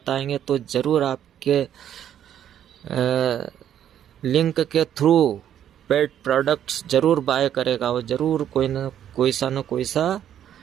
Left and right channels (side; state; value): left; quieter; 10.2 dB